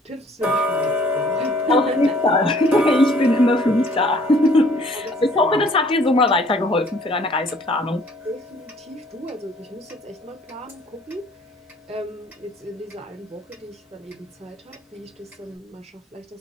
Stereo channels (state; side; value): normal; both; correlation 0.58